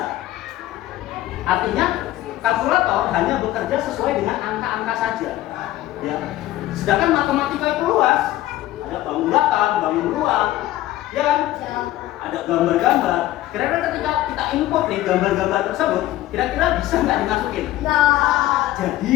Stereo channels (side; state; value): right; quieter; 15.4 dB